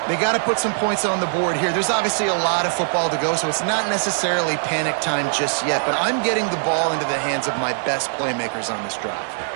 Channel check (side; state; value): left; silent; digital silence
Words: They got to put some points on the board here. There's obviously a lot of football to go, so it's not necessarily panic time just yet, but I'm getting the ball into the hands of my best playmakers on this drive.